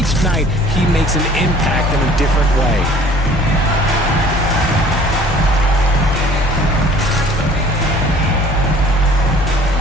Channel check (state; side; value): normal; both; correlation 0.51